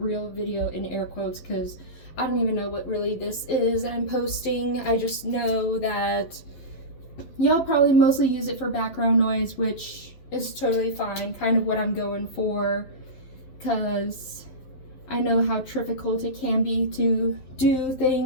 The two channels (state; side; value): late; right; 11 ms